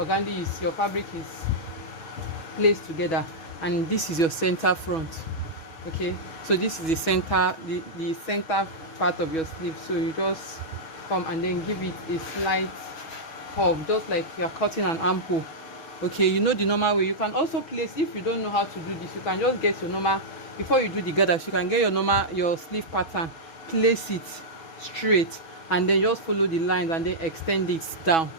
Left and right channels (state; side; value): late; right; 6.2 ms